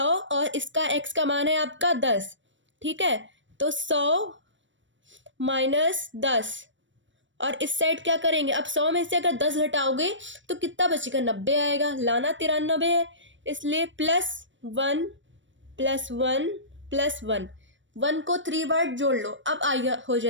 और इसका x का मान है आपका 10, ठीक है। तो 100 माइनस 10, और इस साइड क्या करेंगे, अब 100 में से अगर 10 घटाओगे तो कितना बचेगा, 90 आएगा, लाना 93 है, इसलिए +1 +1 +1, 1 को 3 बार जोड़ लो, अब आएगा, हो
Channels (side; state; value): left; late; 0.55 ms